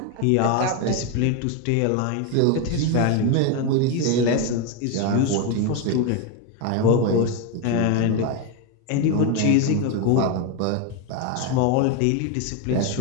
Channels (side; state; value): both; different; correlation 0.02